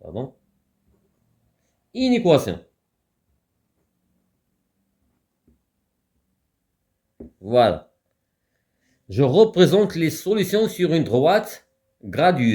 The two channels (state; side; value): identical; both; correlation 1.00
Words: inéquation. Voilà. Je représente les solutions sur une droite